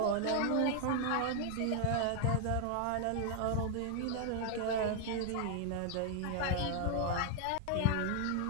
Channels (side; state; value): both; different; correlation 0.00